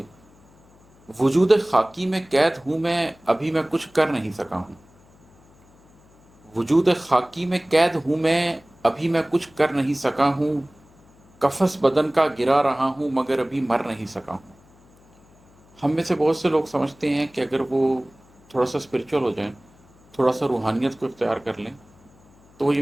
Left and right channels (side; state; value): left; noise; hum, 29 dB below the sound